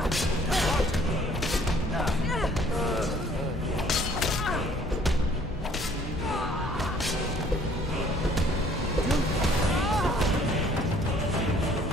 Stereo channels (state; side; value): normal; both; correlation 0.58